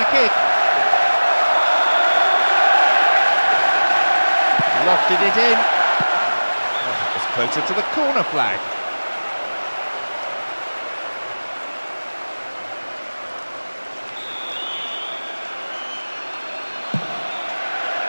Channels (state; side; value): inverted; both; correlation -1.00